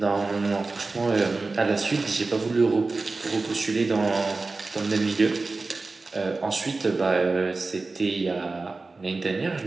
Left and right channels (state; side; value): quieter; left; 3.6 dB